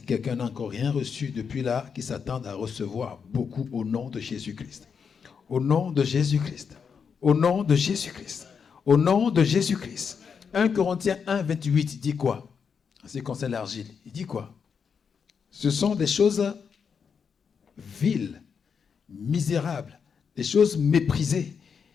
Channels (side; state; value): right; quieter; 6.4 dB